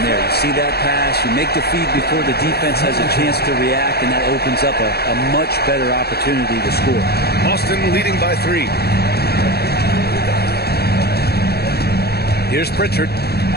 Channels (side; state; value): right; late; 0.46 ms